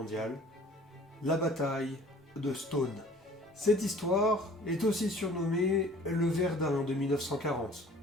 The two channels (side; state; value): both; normal; correlation 0.50